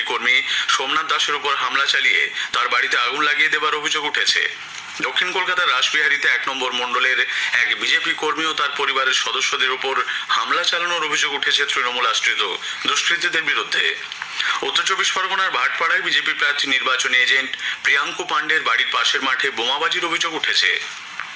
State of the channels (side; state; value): both; identical; correlation 1.00